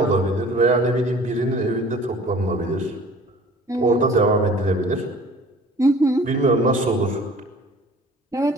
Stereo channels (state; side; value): normal; both; correlation 0.48